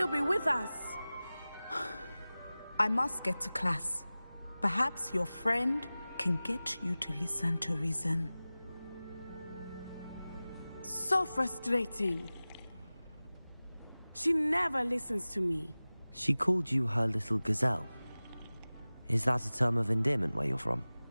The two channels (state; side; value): inverted; both; correlation -0.98